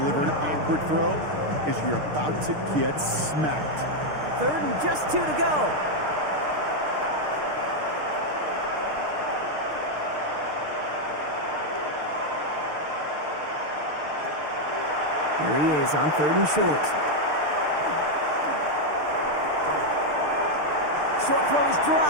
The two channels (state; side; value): late; left; 6.6 ms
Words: an awkward throw as you're about to get smacked. 3rd and just 2 to go. Here he is on 3rd and short. Short throw is